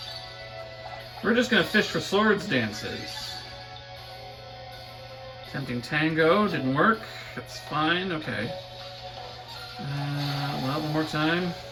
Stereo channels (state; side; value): identical; both; correlation 1.00